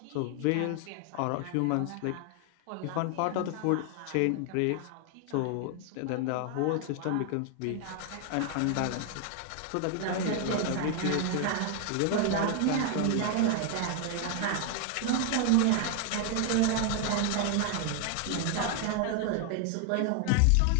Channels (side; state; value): both; different; correlation 0.00